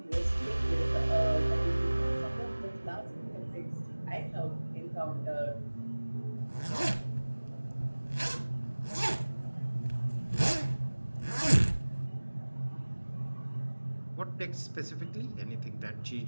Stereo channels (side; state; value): both; inverted; correlation -1.00